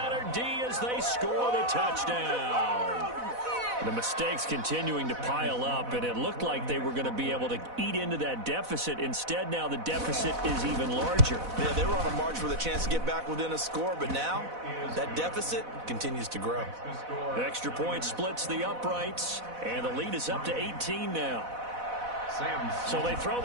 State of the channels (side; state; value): left; late; 4.0 ms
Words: D as they score the touchdown. The mistakes continuing to pile up, and it looked like they were going to be able to eat into that deficit. Instead, now the deficit is even larger. Yeah, they were on a march with a chance to get back within a score, but now that deficit continues to grow. Extra point splits the uprights, and the lead is up to 18 now. So they throw